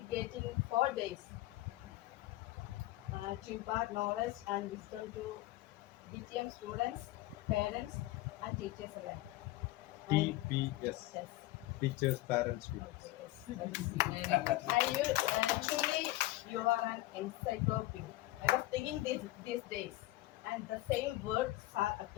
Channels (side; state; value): right; quieter; 17.3 dB